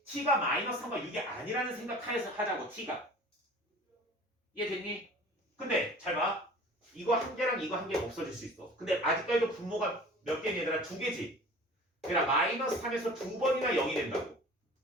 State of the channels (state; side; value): normal; both; correlation 0.43